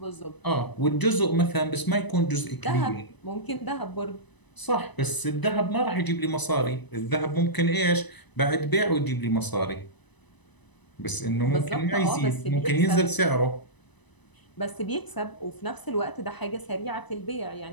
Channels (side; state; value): right; late; 1.0 ms